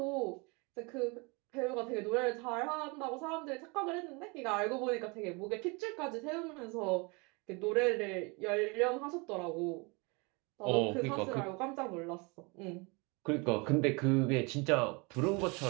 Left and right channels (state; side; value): quieter; left; 29.1 dB